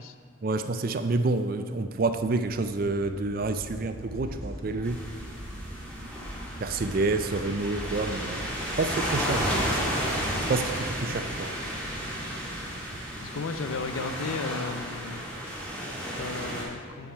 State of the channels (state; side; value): normal; both; correlation 0.34